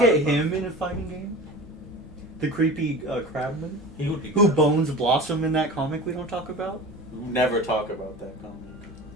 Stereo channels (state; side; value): normal; both; correlation 0.35